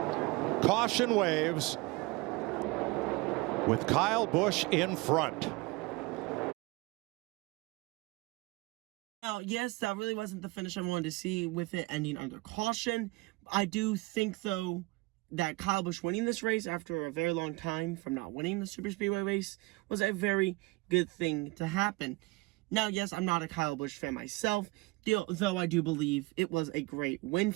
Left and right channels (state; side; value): quieter; left; 23.7 dB